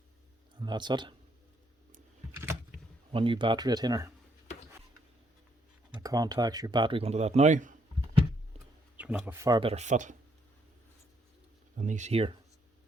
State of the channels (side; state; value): both; normal; correlation 0.72